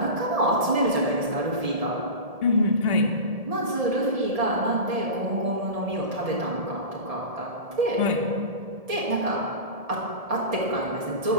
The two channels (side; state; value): left; late; 1.7 ms